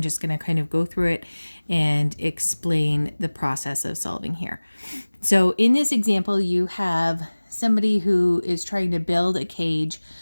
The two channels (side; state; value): both; inverted; correlation -1.00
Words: just going to kind of go through it and explain the process of solving here. So in this example, you have somebody who is trying to build a cage